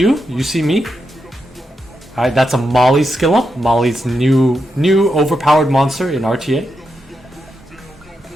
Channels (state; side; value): normal; both; correlation 0.85